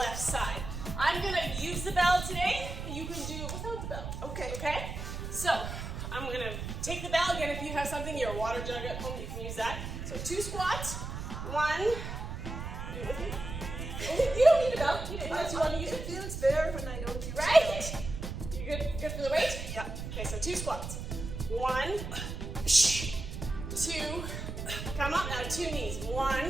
side. I'm gonna use the bell today. You can do it without the bell. Okay. Okay? So, I'm gonna take the bell again. If you have something, your water jug at home, you can use that. So 2 squats, 1, do it with me. You don't need a bell, unless you want to use it. It feels better when I don't use it. Right? You good for the weight? Yeah. Okay, so 2 squats. 1, 2, come up now, 2 knees.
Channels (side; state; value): right; noise; rumble, 6 dB below the sound